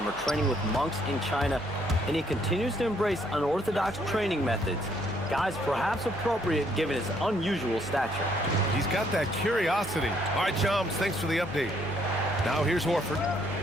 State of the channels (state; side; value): normal; both; correlation 0.68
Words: training with monks in China, and he continues to embrace unorthodox training methods. Guys, perhaps appropriate given his unusual stature. He's got that curiosity. All right, Shams, thanks for the update. Now here's Horford.